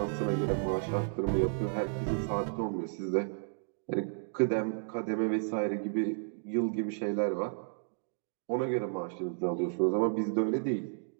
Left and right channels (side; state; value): left; silent; digital silence